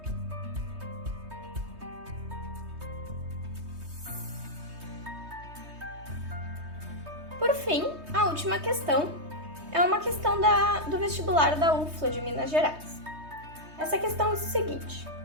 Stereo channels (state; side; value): late; left; 3.2 ms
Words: Por fim, a última questão é uma questão do vestibular da UFLA de Minas Gerais. Essa questão diz o seguinte: